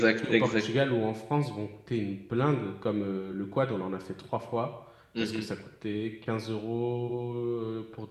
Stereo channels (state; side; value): identical; both; correlation 1.00